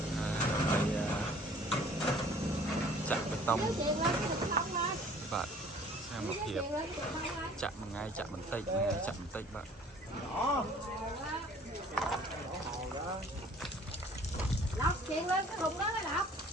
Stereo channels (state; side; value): normal; both; correlation 0.52